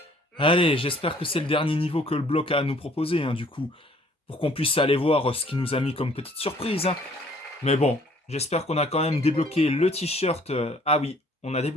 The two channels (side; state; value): both; normal; correlation 0.58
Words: Allez, j'espère que c'est le dernier niveau que le bloc a à nous proposer, hein, du coup. Pour qu'on puisse aller voir ce qu'il nous a mis comme petite surprise. Hein. Mais bon, j'espère qu'on a quand même débloqué le t-shirt. Ah oui, on a